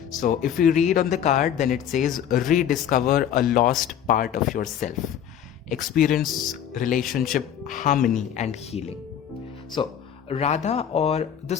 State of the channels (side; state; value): right; quieter; 9.4 dB